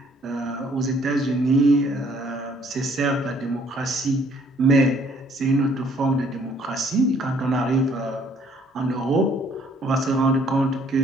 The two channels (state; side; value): normal; both; correlation 0.62